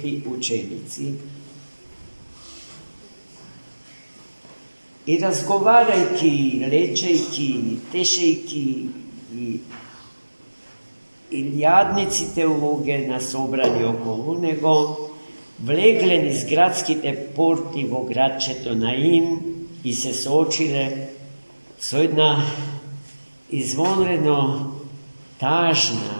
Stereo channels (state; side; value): inverted; both; correlation -1.00